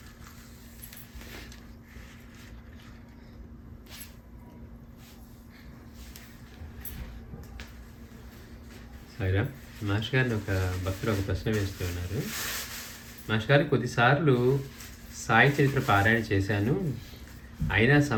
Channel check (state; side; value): identical; both; correlation 1.00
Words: సాయిరా మాస్టర్ గారిని ఒక భక్తులు ఒక ప్రశ్న వేస్తూ ఉన్నారు. మాస్టర్ గారు, కొద్దిసార్లు సాయి చరిత్ర పారాయణ చేశాను, అయినా